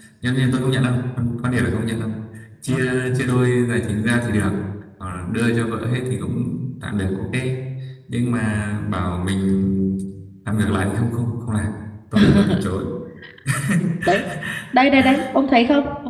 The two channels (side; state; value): both; identical; correlation 1.00